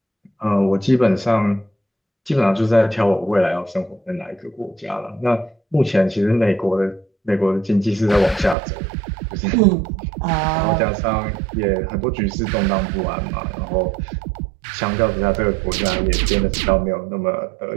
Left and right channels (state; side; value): drops out; left; at 8.6 s